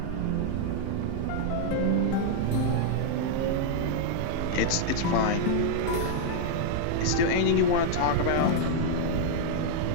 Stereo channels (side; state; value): both; different; correlation -0.01